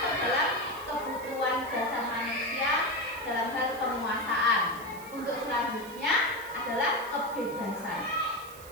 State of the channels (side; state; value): right; noise; hiss, 18 dB below the sound